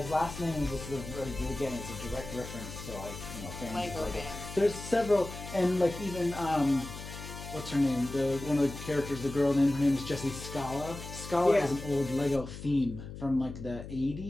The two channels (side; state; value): left; noise; hum, 11 dB below the sound